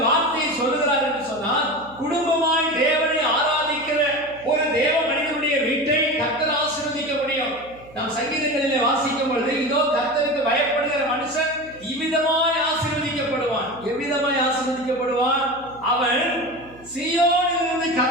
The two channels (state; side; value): noise; right; hum, 24 dB below the sound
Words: வார்த்தையை சொல்லுகிறார் என்று சொன்னால், குடும்பமாய் தேவனை ஆராதிக்கிற ஒரு தேவ மனிதனுடைய வீட்டை கர்த்தர் ஆசீர்வதிக்க முடியும். நாம் சங்கீதங்களிலே வாசிக்கும் பொழுது, இதோ கர்த்தருக்கு பயப்படுகிற மனுஷன் இவ்விதமாய் ஆசீர்வதிக்கப்படுவான். எவ்விதமாய் ஆசீர்வதிக்கப்படுவான்? அவன் சீயோனிலிருந்து